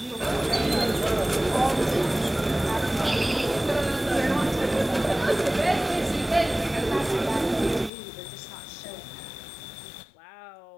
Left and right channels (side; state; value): right; drops out; at 7.9 s